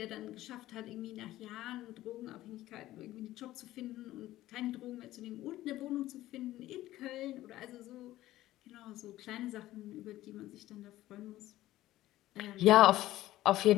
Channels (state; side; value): quieter; right; 15.3 dB